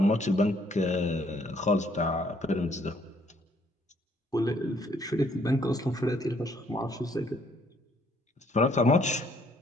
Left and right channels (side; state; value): both; normal; correlation 0.65